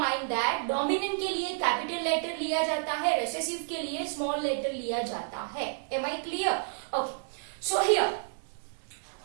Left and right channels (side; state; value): left; silent; digital silence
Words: that dominant के लिए capital letter लिया जाता है, recessive के लिए small letter लिया जाता है. Am I clear? Okay. So here,